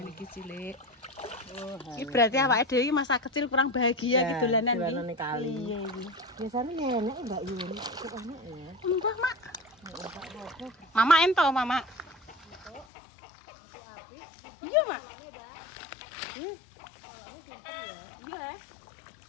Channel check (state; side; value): drops out; right; at 12.9 s